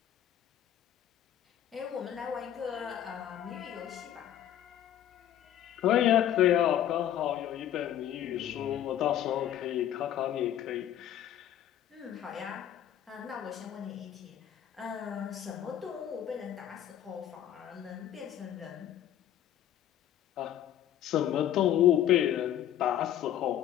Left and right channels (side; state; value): right; quieter; 11.2 dB